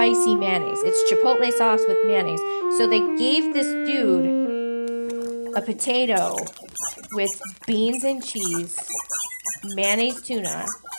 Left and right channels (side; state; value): both; inverted; correlation -1.00